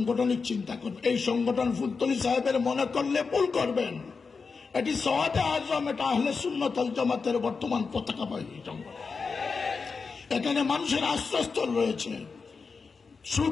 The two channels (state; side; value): quieter; right; 4.9 dB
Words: চিন্তা করবেন। এই সংগঠন ফুলতলি সাহেবের মনে করলে ভুল করবেন। এটি সওয়াদে আজম, এটা আহলে সুন্নাত ওয়াল জামাতের বর্তমান পতাকাবাহী সংগঠন। এখানে মানুষের আশ্রয়স্থল রয়েছে,